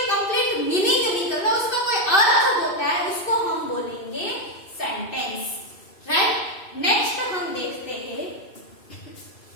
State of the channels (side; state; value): right; late; 2.6 ms